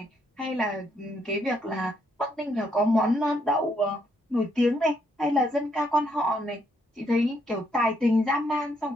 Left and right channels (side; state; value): both; normal; correlation 0.74